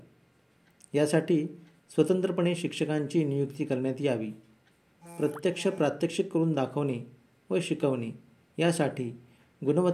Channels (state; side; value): identical; both; correlation 1.00